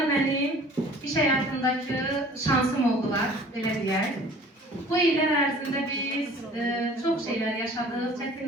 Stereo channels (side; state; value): both; normal; correlation 0.49